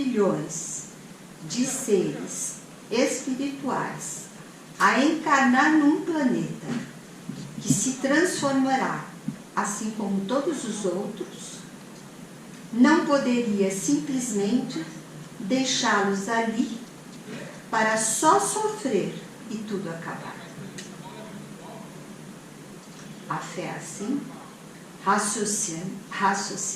de seres espirituais a encarnar num planeta que se transformará, assim como todos os outros, não poderia simplesmente deixá-los ali para só sofrer e tudo acabar. A fé assim,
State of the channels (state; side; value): identical; both; correlation 1.00